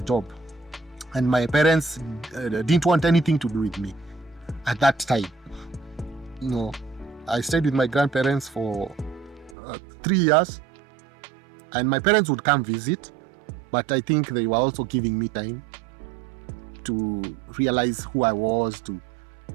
job, and my parents didn't want anything to do with me at that time. I stayed with my grandparents for 3 years, and my parents would come visit, but I think they were also giving me time to realize who I was, to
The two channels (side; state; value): left; drops out; at 9.6 s